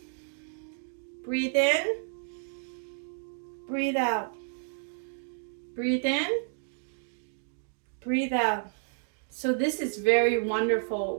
Breathe in. Breathe out. Breathe in. Breathe out. So this is very wonderful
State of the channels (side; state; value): left; silent; digital silence